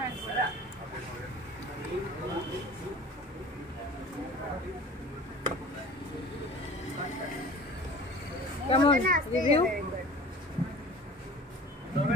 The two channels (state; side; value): normal; both; correlation 0.43